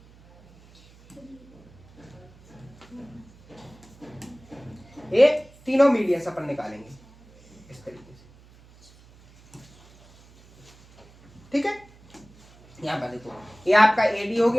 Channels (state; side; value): noise; right; hum, 26 dB below the sound